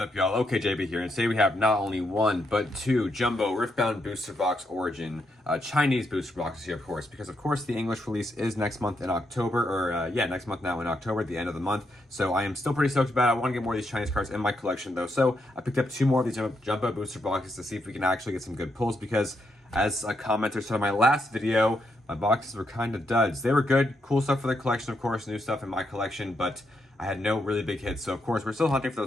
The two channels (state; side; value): normal; both; correlation 0.80